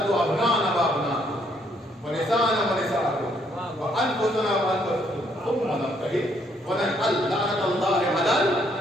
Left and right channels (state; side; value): normal; both; correlation 0.70